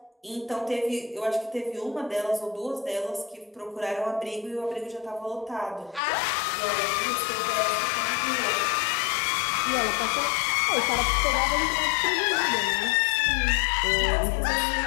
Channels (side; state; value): right; drops out; at 6.0 s